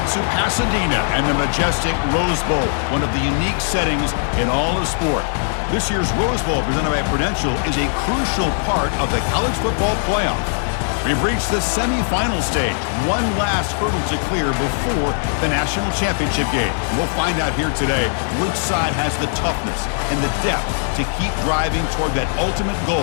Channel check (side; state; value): right; silent; digital silence